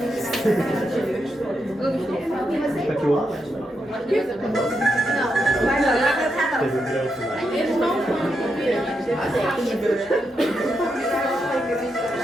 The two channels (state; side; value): normal; both; correlation 0.84